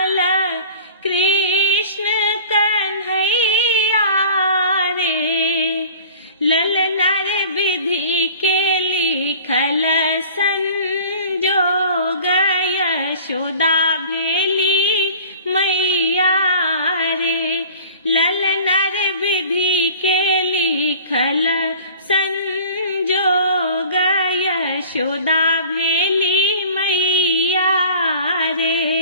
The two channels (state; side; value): inverted; both; correlation -0.45